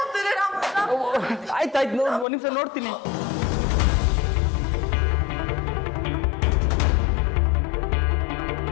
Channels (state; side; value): drops out; right; at 2.2 s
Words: ಆಯ್ತು ಒಂದ್ ನಿಮಿಷ ನೋಡ್ತೀನಿ.